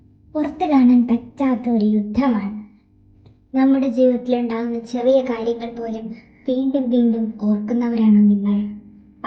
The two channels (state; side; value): identical; both; correlation 1.00